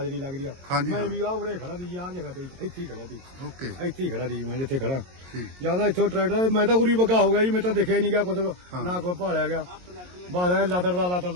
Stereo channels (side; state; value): left; late; 22 ms